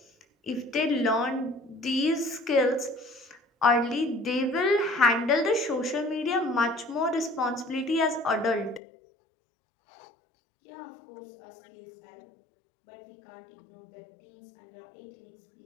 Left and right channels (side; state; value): right; drops out; at 8.8 s